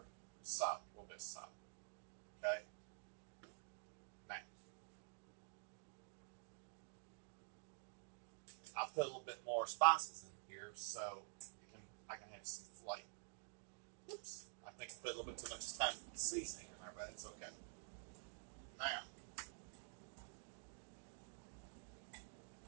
salt, a little bit of salt. Okay? Now, I put a little bit more spices in here so I can have some flavor. Oops, I think I put a little bit too much Italian seasoning in there, but it's okay. Now,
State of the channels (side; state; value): left; silent; digital silence